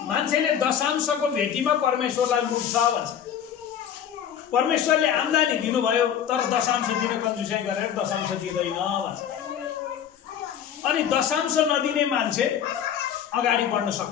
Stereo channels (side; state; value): right; quieter; 9.1 dB